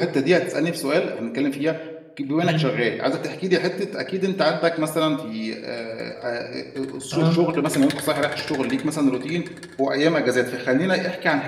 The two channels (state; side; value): identical; both; correlation 1.00